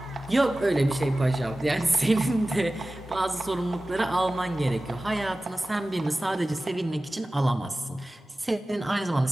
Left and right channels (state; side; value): normal; both; correlation 0.96